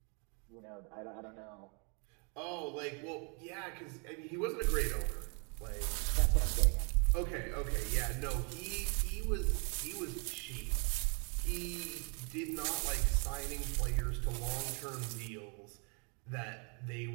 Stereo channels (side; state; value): left; quieter; 36.1 dB